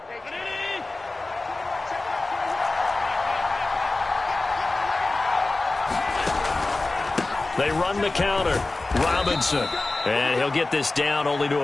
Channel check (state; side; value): quieter; right; 3.2 dB